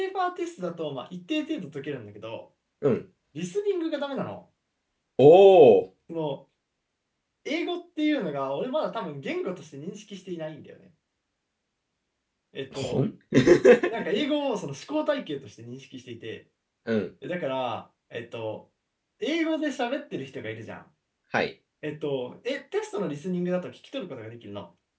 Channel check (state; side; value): identical; both; correlation 1.00